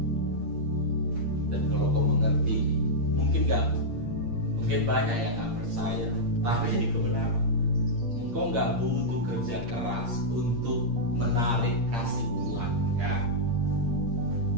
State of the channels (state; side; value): late; left; 8.7 ms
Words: Dan kalau kau mengerti, mungkin banyak yang gak percaya, tapi ini kebenaran. Engkau gak butuh kerja keras untuk menarik kasih Tuhan, ya.